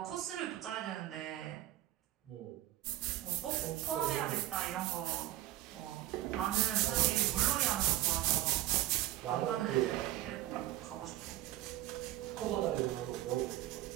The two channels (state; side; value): quieter; left; 14.9 dB